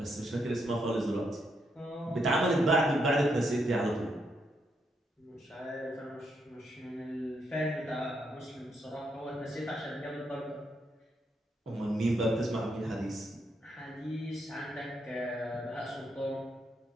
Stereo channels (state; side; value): normal; both; correlation 0.78